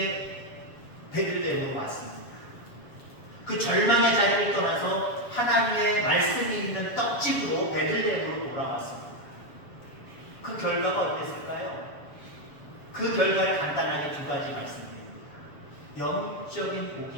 베들레헴으로 왔습니다. 그 절망의 자리를 떠나서 하나님의 말씀이 있는 떡집으로 베들레헴으로 돌아왔습니다. 그 결과가 어땠을까요? 그 결과를 간단하게 두 가지 말씀드립니다. 영적인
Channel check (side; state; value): right; late; 7.1 ms